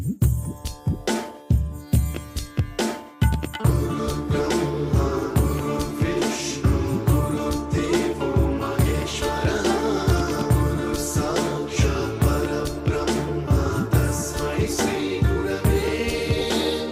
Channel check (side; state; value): both; identical; correlation 1.00